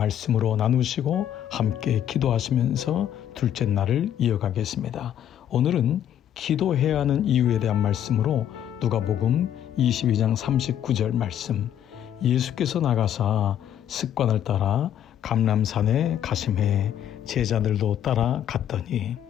나누시고 함께 기도하시면서 둘째 날을 이어가겠습니다. 오늘은 기도해야 하는 이유에 대한 말씀으로 누가복음 22장 39절 말씀, 예수께서 나가사 습관을 따라 감람산에 가심해 제자들도 따라 갔더니,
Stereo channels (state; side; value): quieter; right; 10.3 dB